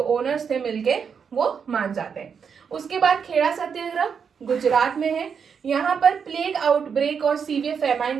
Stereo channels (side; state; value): left; quieter; 6.6 dB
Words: ओनर्स थे मिलके वो मान जाते हैं। उसके बाद खेड़ा सत्याग्रह गुजरात में है। यहाँ पर प्लेग आउटब्रेक और सीवियर फेमाइन